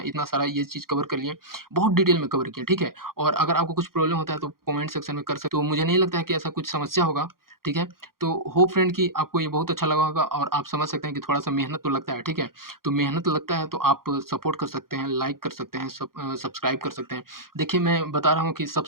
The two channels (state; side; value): late; left; 0.92 ms